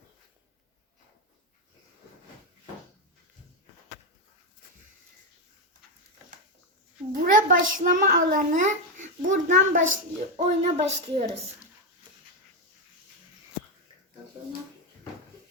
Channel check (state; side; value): normal; both; correlation 0.06